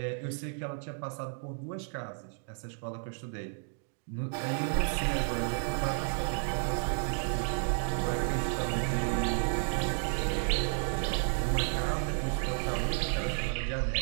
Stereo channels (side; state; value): left; silent; 56 dB below the other